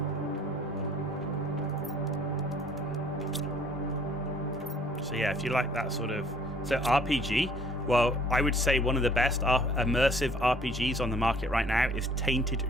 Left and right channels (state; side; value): normal; both; correlation 0.57